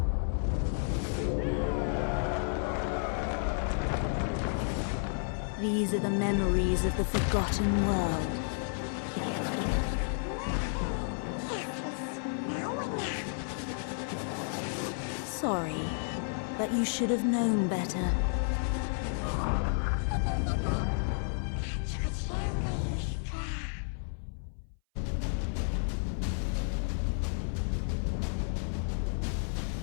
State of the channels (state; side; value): silent; right; 57 dB below the other